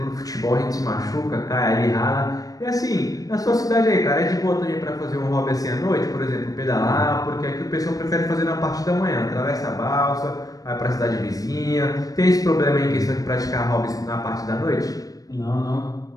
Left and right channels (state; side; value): late; right; 0.18 ms